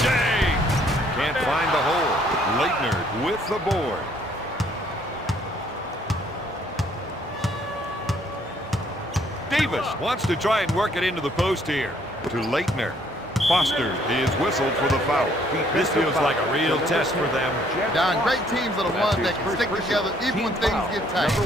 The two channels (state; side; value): normal; both; correlation 0.64